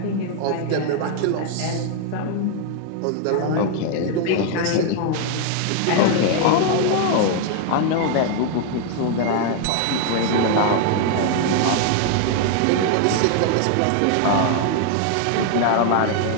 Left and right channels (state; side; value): different; both; correlation 0.00